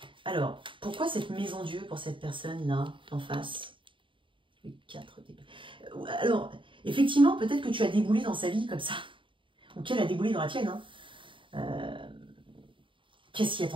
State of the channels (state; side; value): late; left; 0.25 ms